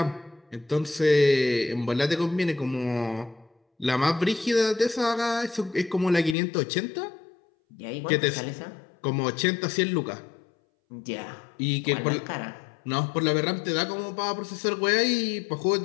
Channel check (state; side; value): drops out; right; at 6.4 s